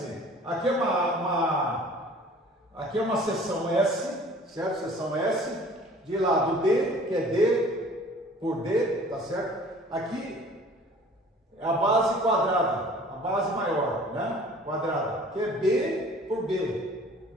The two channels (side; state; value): both; normal; correlation 0.49